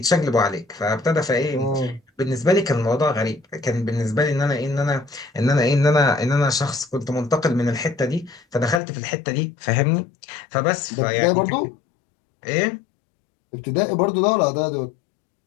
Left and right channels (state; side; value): drops out; right; at 8.8 s